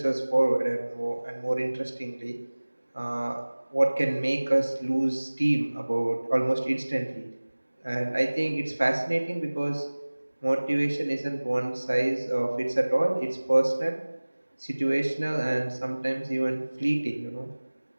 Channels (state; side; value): inverted; both; correlation -1.00